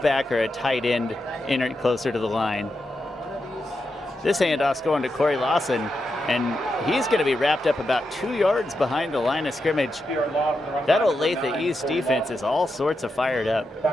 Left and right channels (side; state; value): both; normal; correlation 0.86